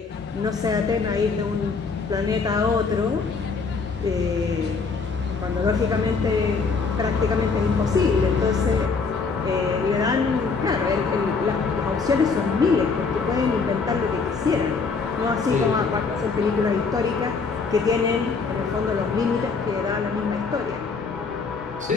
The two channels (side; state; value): right; quieter; 4.8 dB